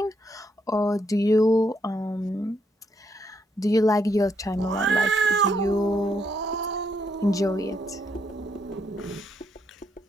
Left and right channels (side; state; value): both; normal; correlation 0.76